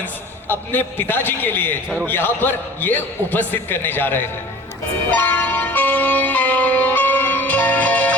अपने पिताजी के लिए यहाँ पर ये उपस्थित करने जा रहे हैं।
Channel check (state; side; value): normal; both; correlation 0.42